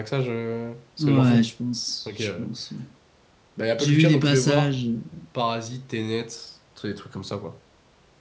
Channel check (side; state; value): both; identical; correlation 1.00